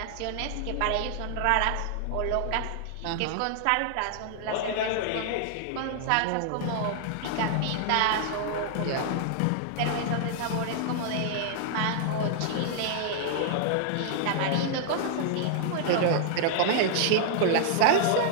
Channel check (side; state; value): both; different; correlation -0.01